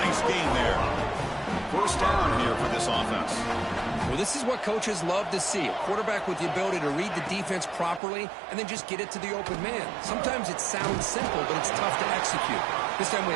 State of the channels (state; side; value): drops out; left; at 8.0 s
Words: gain there. First down here for this offense. Well, this is what coaches love to see. A quarterback with the ability to read the defense properly and then just get it to the open man. Sometimes it sounds simple, but it's tough to execute. This time we